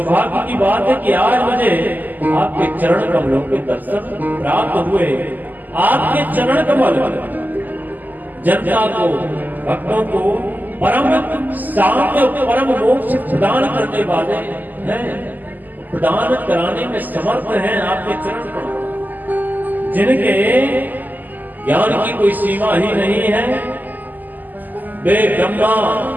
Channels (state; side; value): late; left; 0.085 ms